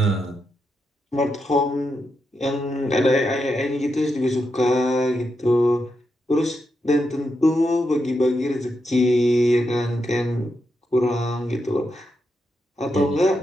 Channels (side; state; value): both; normal; correlation 0.84